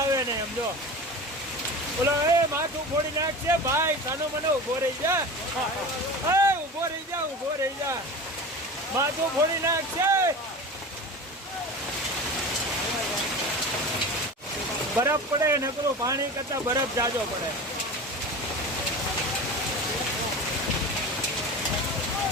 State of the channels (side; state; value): both; normal; correlation 0.32